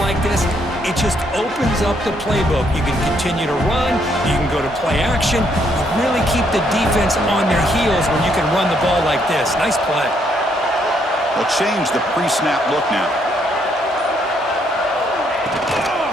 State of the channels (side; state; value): both; normal; correlation 0.72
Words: like this, it just opens up the playbook. You can continue to run. You can go to play action. You really keep the defense on their heels when you can run the ball like this. Nice play. They'll change the pre-snap look now.